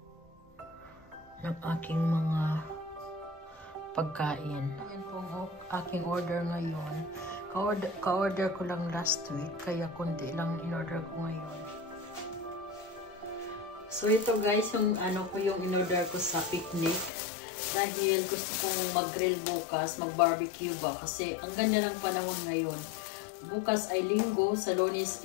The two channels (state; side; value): drops out; right; at 17.1 s